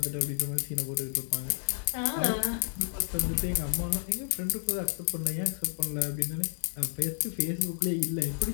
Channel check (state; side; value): silent; right; digital silence